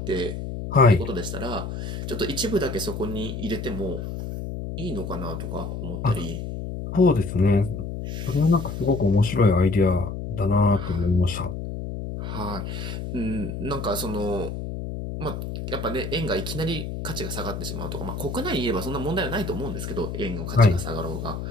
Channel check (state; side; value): noise; left; hum, 6 dB below the sound